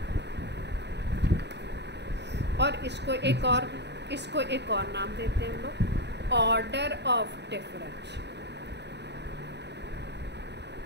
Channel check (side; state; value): left; late; 0.50 ms